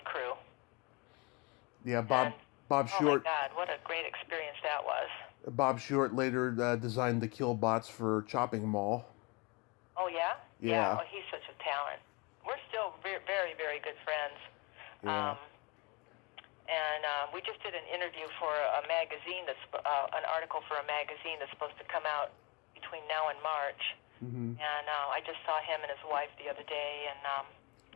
crew. Yeah, Bob Short. Oh my God, what a great experience that was. Bob Short later designed the kill bots for Chopping Mall. Oh, yeah? Yeah. Oh, he's such a talent. We're still very, very good friends. Yeah. And we just did an interview for a magazine an article for a magazine that's supposed to come out between now and March. And I just saw him and his wife the other day, and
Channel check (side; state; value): right; quieter; 28.9 dB